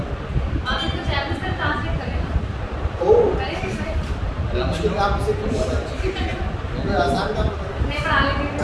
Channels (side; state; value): both; identical; correlation 1.00